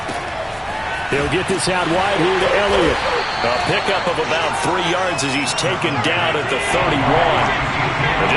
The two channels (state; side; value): identical; both; correlation 1.00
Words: He'll get this out wide here to Elliott. A pickup of about 3 yards as he's taken down at the 31. And